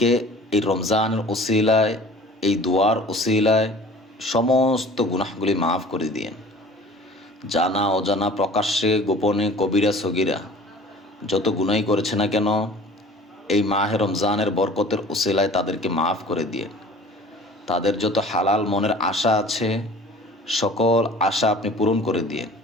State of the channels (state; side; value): normal; both; correlation 0.46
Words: এই রমজানের ওসিলায়, এই দোয়ার ওসিলায় সমস্ত গুনাহগুলি মাফ করে দিয়েন। জানা অজানা, প্রকাশ্যে গোপনে, কবিরা সগিরা যত গুনাই করেছে না কেন, এই মাহে রমজানের বরকতের ওসিলায় তাদেরকে মাফ করে দিয়েন। তাদের যত হালাল মনের আশা আছে, সকল আশা আপনি পূরণ করে দিয়েন।